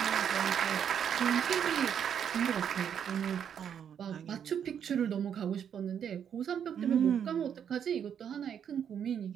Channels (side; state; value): left; quieter; 8.4 dB